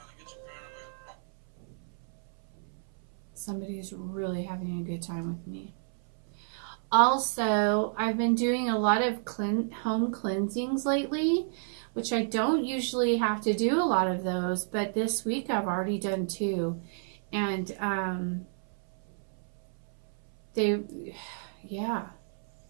Somebody's really having a good time with me. Also, I've been doing a lot of home cleansings lately which I don't usually have to do a lot of those, but this week I've already done 2. And yeah,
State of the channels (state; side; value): silent; left; 57 dB below the other